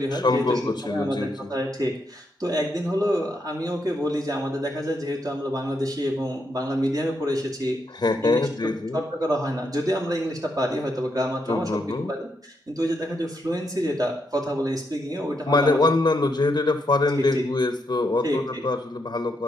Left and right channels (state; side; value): normal; both; correlation 0.79